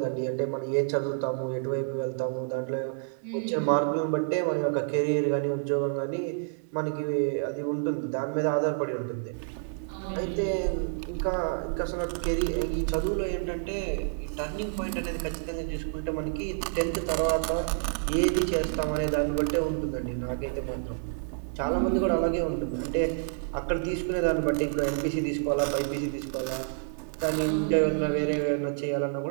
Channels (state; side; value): silent; left; digital silence